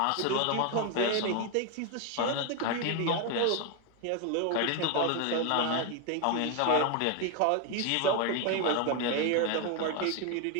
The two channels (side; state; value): both; different; correlation 0.01